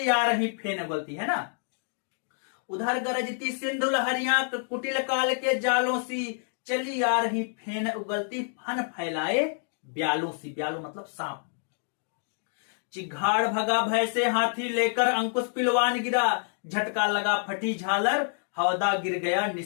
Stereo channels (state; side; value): silent; right; 59 dB below the other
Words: आ रही फेन उगलती है ना, उधर गरजती सिंधु लहरियां कुटिल काल के जालों सी, चली आ रही फेन उगलती फन फैलाए ब्यालों सी। ब्यालों मतलब सांप। चिघाड़ भगा भय से हाथी लेकर अंकुश पिलवान गिरा, झटका लगा फटी झालर हौदा गिर गया